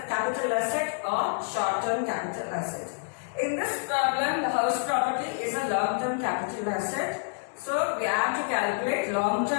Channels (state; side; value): silent; right; 59 dB below the other